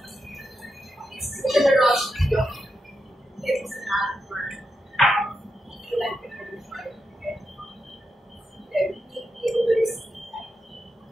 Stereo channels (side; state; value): both; normal; correlation 0.86